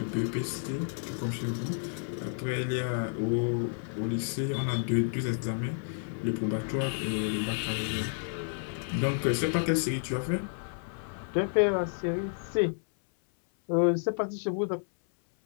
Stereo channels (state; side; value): silent; right; 57 dB below the other